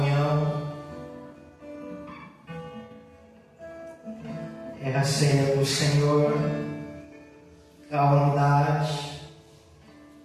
é a ceia do Senhor, a unidade,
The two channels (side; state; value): both; identical; correlation 1.00